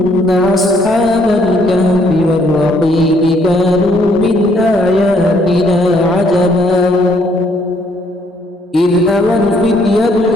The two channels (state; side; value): normal; both; correlation 0.67